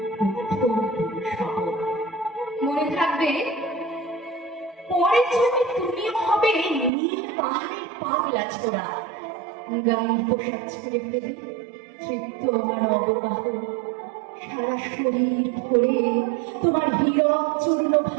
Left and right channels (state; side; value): drops out; left; at 6.9 s